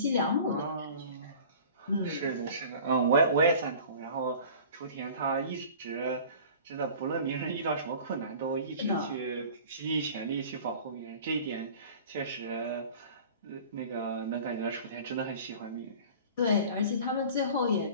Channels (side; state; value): both; inverted; correlation -0.43